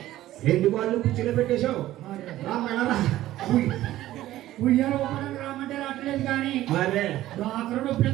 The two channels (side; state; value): left; quieter; 14.6 dB